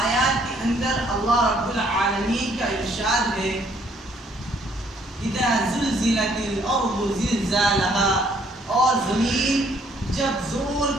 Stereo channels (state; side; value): normal; both; correlation 0.65